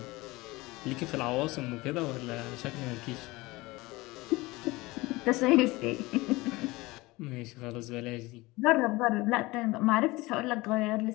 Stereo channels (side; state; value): right; quieter; 21.4 dB